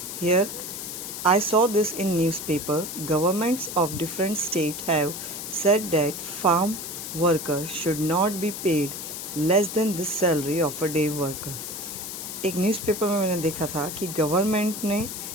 Here I saw this in newspaper. Governments of different states have said that farm workers should not be paid less than the salary of a day worker. एक newspaper में मैंने देखा था कि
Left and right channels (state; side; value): noise; left; hiss, 7 dB below the sound